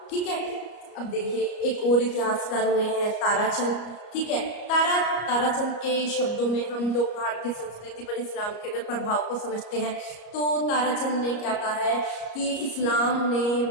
ठीक है। अब देखिए एक और इतिहासकार हुए हैं ताराचंद, ठीक है। ताराचंद के शब्दों में हम लोग भारतीय संस्कृति पर इस्लाम के अगर प्रभाव को समझते हैं तो ताराचंद ने क्या कहा है कि इस्लाम ने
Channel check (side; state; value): right; late; 34 ms